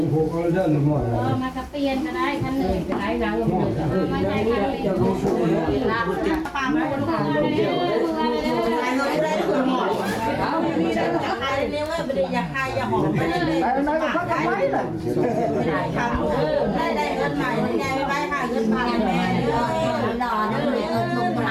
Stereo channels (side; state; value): both; identical; correlation 1.00